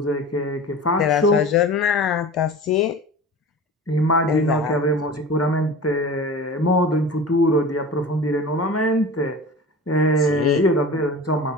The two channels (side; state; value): both; normal; correlation 0.36